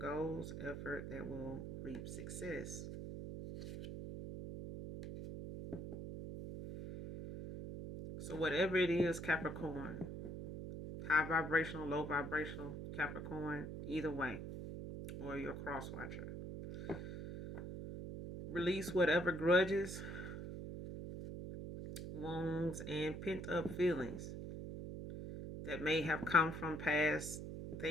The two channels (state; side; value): noise; right; hum, 7 dB below the sound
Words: Effort that will reap success. So whatever it is, Capricorn, high vibrational, low vibrational, Capricorn, either way, or your cross watcher. Release whatever grudges, wounds, and pent up feelings that may have come from past